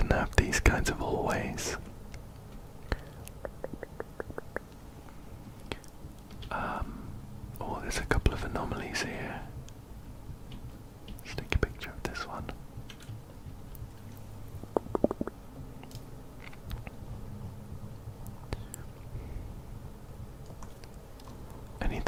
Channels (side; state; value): both; identical; correlation 1.00